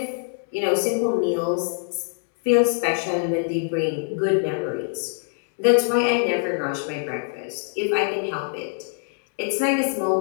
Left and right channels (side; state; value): right; silent; 62 dB below the other